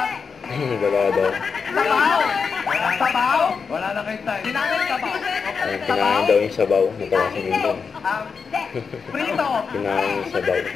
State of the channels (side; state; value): right; quieter; 5.6 dB